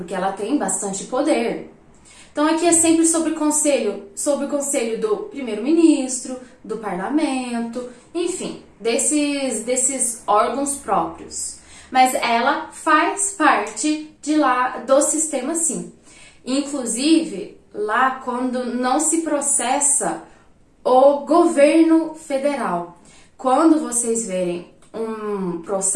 ela tem bastante poder. Então aqui é sempre sobre o conselho do primeiro-ministro, do parlamento, enfim, desses órgãos próprios. Mas ela faz parte de lá do sistema, sim. Inclusive, lá quando não se processa o governo federal. Quando vocês verem um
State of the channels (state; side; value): identical; both; correlation 1.00